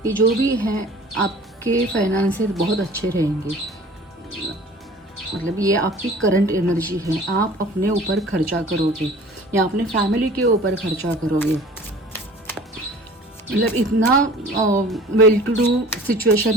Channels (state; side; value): normal; both; correlation 0.46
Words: ये जो भी है आपके फाइनेंसेस बहुत अच्छे रहेंगे। मतलब ये आपकी करंट एनर्जी है। आप अपने ऊपर खर्चा करोगे या अपने फैमिली के ऊपर खर्चा करोगे। मतलब इतना वेल टू डू सिचुएशन